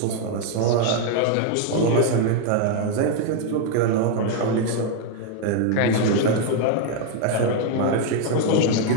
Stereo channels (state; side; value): different; both; correlation 0.01